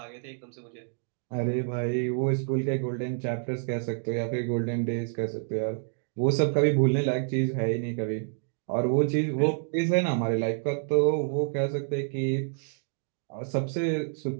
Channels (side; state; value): left; silent; digital silence